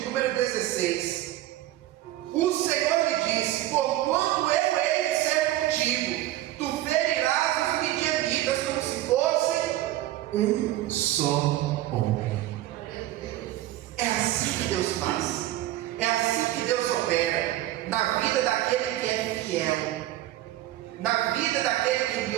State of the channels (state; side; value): quieter; left; 14.8 dB